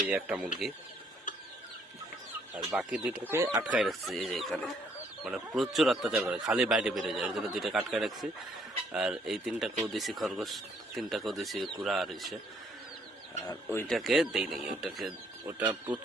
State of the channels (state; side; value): normal; both; correlation 0.67